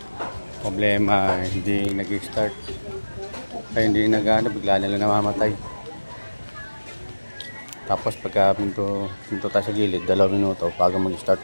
Problema, hindi nag-start. Kaya hindi nag-ano, bigla na lang namamatay. Tapos pagka pinto tayo sa gilid, 2 minuto bago mag-start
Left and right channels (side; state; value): both; inverted; correlation -1.00